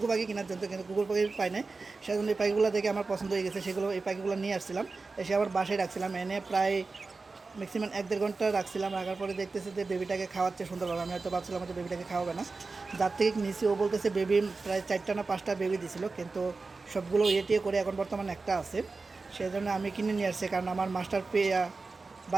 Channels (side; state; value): left; quieter; 3.9 dB